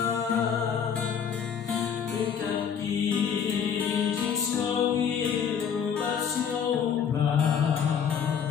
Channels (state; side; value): quieter; right; 7.5 dB